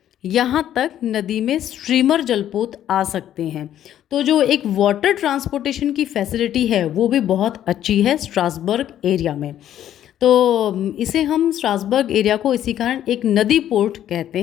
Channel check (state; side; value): quieter; right; 11.3 dB